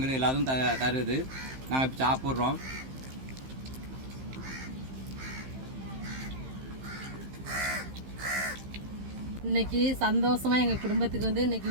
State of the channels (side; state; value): left; late; 15 ms